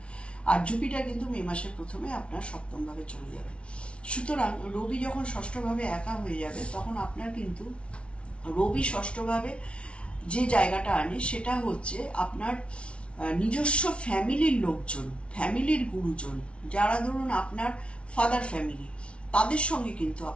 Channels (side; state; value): right; late; 0.060 ms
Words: আর জুপিটার কিন্তু মে মাসের প্রথমে আপনার সপ্তম ভাবে চলে যাবে। সুতরাং রবি যখন ষষ্ঠভাবে একা হয়ে যাবে, তখন আপনার কিন্তু রবি ষষ্ঠভাবে যে জায়গাটা আনে সেটা হচ্ছে আপনার নিজস্ব ফ্যামিলির লোকজন, ফ্যামিলির গুরুজন, যারা ধরুন আপনার ফাদার ফ্যামিলি, তাদের সঙ্গে কিন্তু